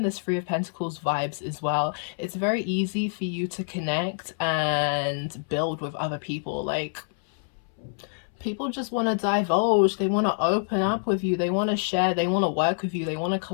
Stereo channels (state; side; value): silent; right; 61 dB below the other